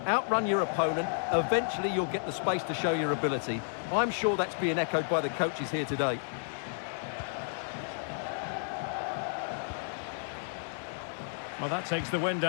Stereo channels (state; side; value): silent; right; digital silence